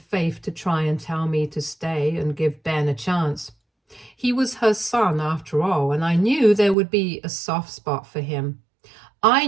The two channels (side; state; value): left; drops out; at 6.8 s